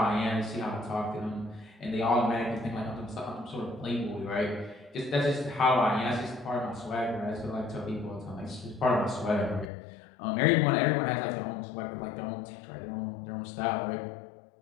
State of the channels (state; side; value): drops out; right; at 9.7 s